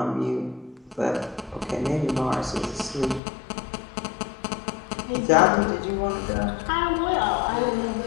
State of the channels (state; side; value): drops out; right; at 3.2 s